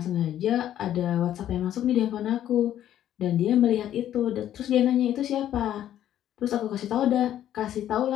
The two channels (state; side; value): quieter; right; 11.5 dB